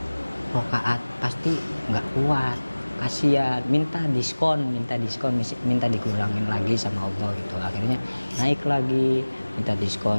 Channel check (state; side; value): inverted; both; correlation -1.00